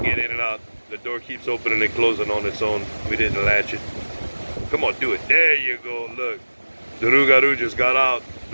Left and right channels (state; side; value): inverted; both; correlation -1.00